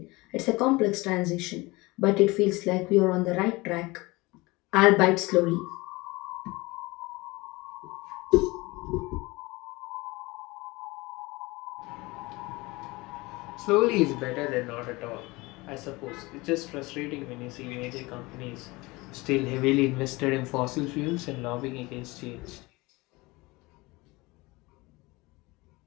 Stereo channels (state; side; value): quieter; right; 22.8 dB